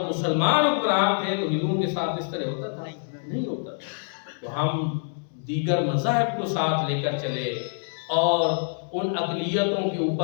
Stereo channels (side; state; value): right; silent; 61 dB below the other